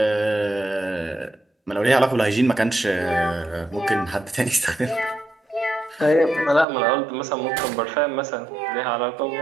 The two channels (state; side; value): drops out; left; at 6.7 s